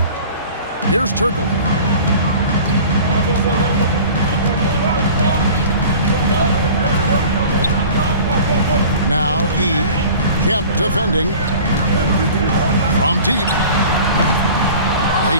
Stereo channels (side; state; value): both; inverted; correlation -0.42